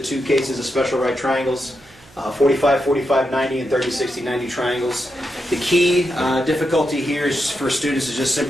two cases of special right triangles, 45, 45, 90 and 30, 60, 90 triangles. The key difficulty here is for students is just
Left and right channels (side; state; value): right; noise; hum, 26 dB below the sound